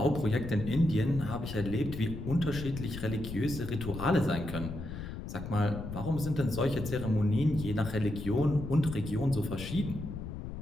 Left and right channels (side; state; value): left; noise; rumble, 8 dB below the sound